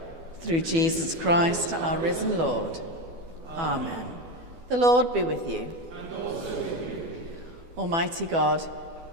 Through Jesus Christ, our risen Lord. Amen. The Lord be with you. And also with you. Almighty God,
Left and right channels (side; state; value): left; late; 12 ms